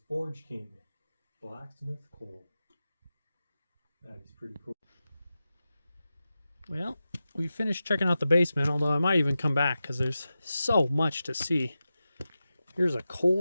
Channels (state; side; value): inverted; both; correlation -0.92